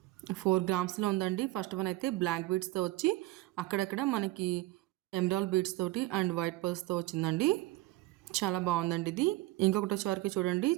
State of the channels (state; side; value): quieter; left; 18.3 dB